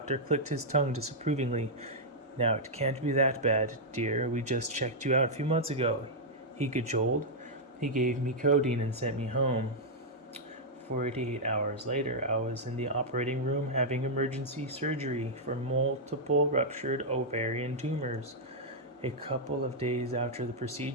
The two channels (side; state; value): both; normal; correlation -0.06